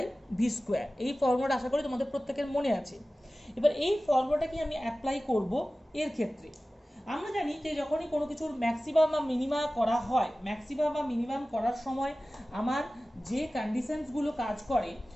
V square. এই ফর্মুলাটা আশা করি তোমাদের প্রত্যেকের মনে আছে। এবার এই ফর্মুলাটাকে আমি অ্যাপ্লাই করব এর ক্ষেত্রে। আমরা জানি যে যখনই কোনো কিছুর ম্যাক্সিমাম বা মিনিমাম করা হয়, ম্যাক্সিমাম বা মিনিমাম করার সময় আমার যে কন্ডিশনসগুলো কাজ করে,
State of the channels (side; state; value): both; normal; correlation 0.96